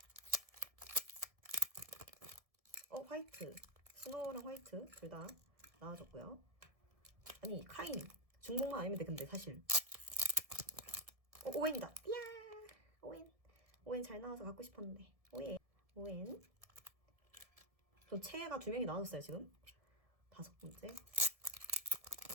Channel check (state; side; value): late; left; 1.7 ms